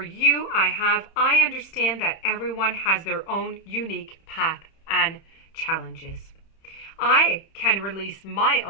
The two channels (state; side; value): late; right; 31 ms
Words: you, I understand that everyone has their own unique path and challenges. I can release my